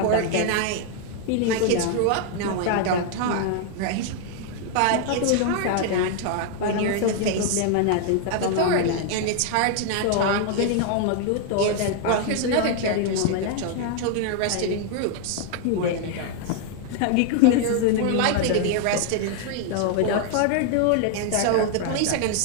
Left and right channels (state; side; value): different; both; correlation 0.00